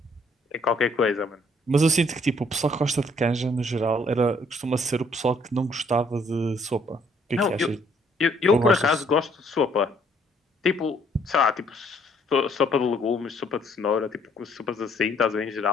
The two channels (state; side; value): normal; both; correlation 0.65